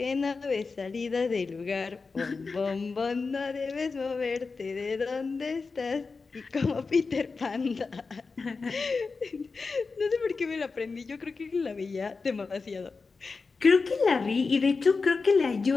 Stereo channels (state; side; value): quieter; right; 4.4 dB